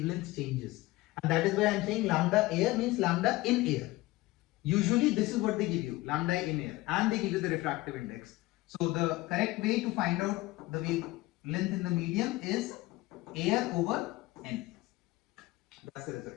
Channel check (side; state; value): right; quieter; 19.2 dB